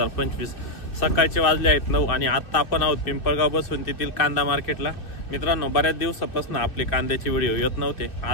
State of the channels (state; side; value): late; right; 2.6 ms